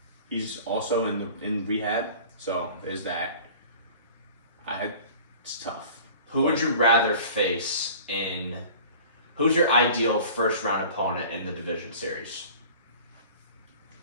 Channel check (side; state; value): both; inverted; correlation -0.44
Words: He's also in rehab, so there's that. It's tough. Who would you rather face in? Who's your ideal first round opponent in the division series?